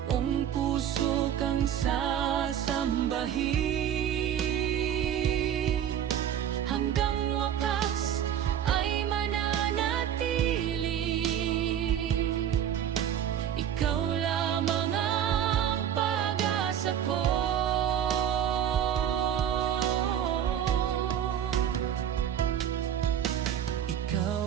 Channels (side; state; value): left; quieter; 9.8 dB